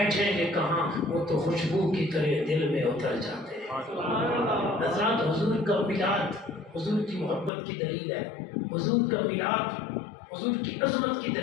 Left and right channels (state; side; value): drops out; right; at 7.5 s